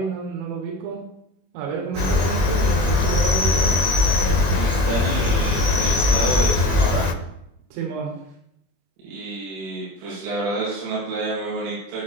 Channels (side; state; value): left; late; 21 ms